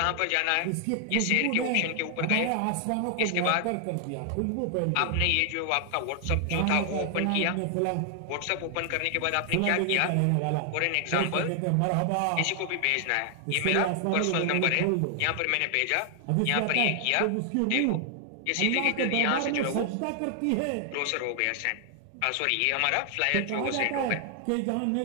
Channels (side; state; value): both; different; correlation 0.00